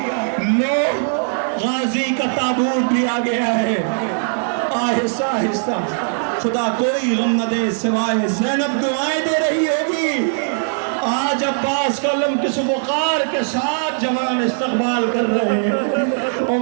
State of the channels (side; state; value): left; silent; 58 dB below the other